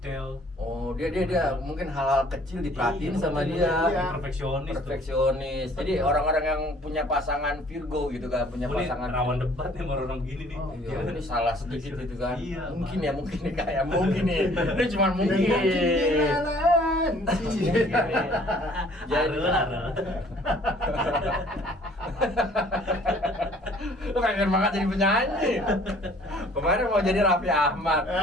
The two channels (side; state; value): both; normal; correlation 0.56